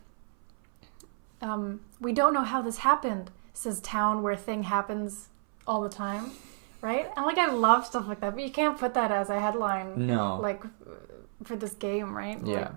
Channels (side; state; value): left; silent; 58 dB below the other